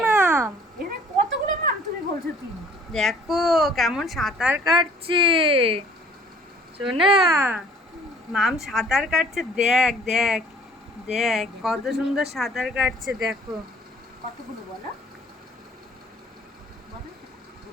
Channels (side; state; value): both; normal; correlation 0.54